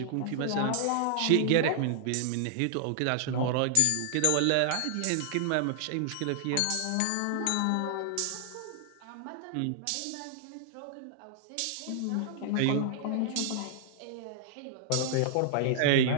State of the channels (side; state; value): both; different; correlation -0.01